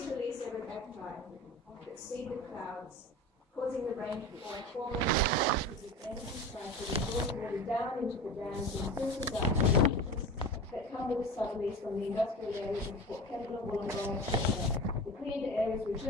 release aerobacti that seed the clouds, causing the rain to fall, forming the energy cycle that draws water down into the dams and filters out the leaches that come with the southerlies from the industrial areas of Port Kembla, Wollongong, etc. The cleared areas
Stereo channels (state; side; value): normal; both; correlation 0.31